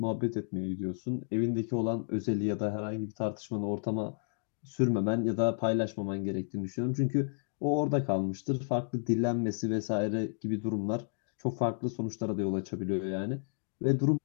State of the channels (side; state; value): right; silent; digital silence